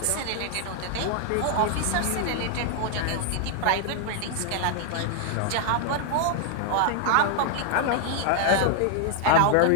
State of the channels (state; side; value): different; both; correlation 0.00